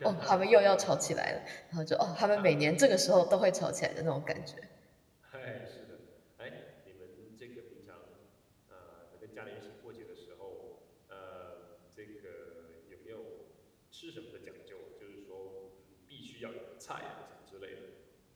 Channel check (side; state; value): both; identical; correlation 1.00